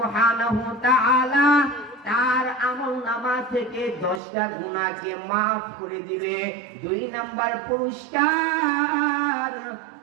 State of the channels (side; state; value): left; drops out; at 4.2 s